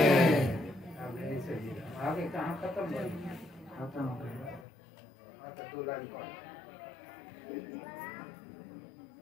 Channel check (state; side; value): drops out; right; at 4.7 s